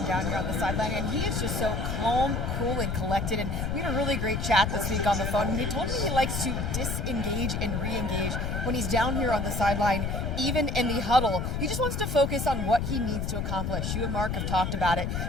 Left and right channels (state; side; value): noise; left; rumble, 1 dB below the sound